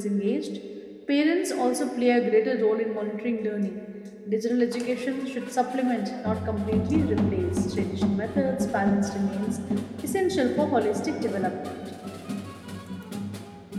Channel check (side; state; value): both; identical; correlation 1.00